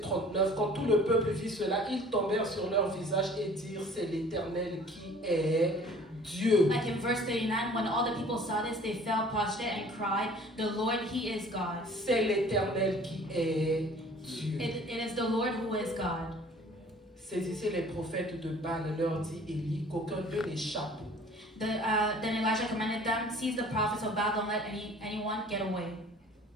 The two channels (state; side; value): normal; both; correlation 0.50